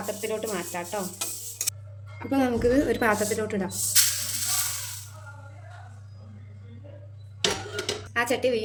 മാറ്റാം കേട്ടോ. അപ്പോൾ നമുക്കിത് ഒരു പാത്രത്തിലോട്ട് ഇടാം. ആ ചട്ടി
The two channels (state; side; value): identical; both; correlation 1.00